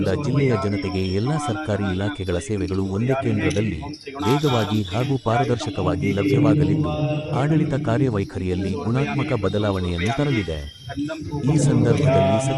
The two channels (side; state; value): both; identical; correlation 1.00